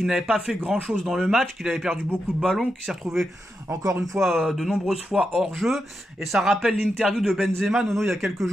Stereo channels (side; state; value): both; normal; correlation 0.86